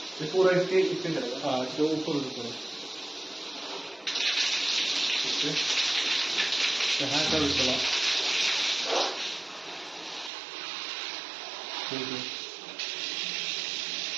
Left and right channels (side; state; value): left; drops out; at 10.3 s